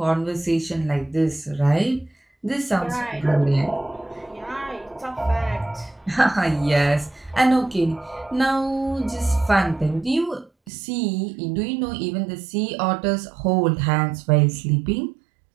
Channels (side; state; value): left; drops out; at 10.7 s